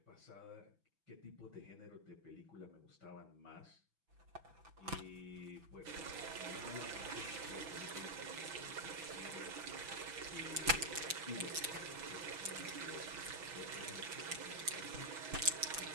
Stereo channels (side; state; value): left; late; 5.9 ms